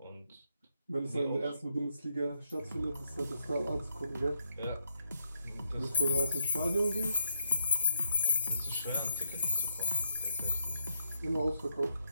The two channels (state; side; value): inverted; both; correlation -0.77